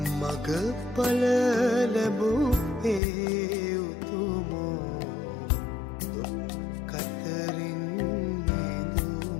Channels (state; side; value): drops out; right; at 3.0 s